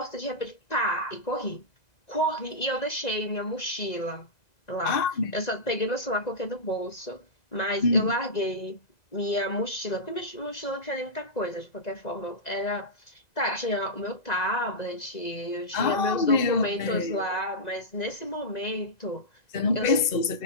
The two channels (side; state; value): right; late; 2.0 ms